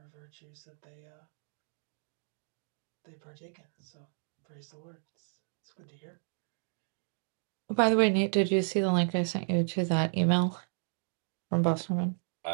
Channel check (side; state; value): left; silent; digital silence